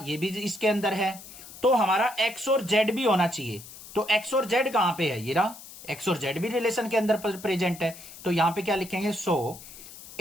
भी इसके अंदर है, तो हमारा एक्स और जेड भी होना चाहिए। तो एक्स और जेड कहां पे है, ये रहा, एक्स और जेड भी रिलेशन के अंदर प्रेजेंट है, तो यहां पे क्या लिखेंगे, सो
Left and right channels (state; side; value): noise; left; hiss, 16 dB below the sound